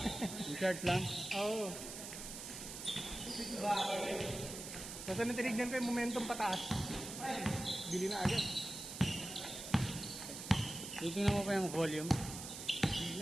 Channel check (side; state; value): right; noise; hiss, 9 dB below the sound